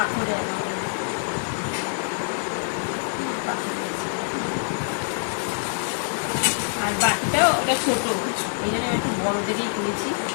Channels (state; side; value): silent; right; digital silence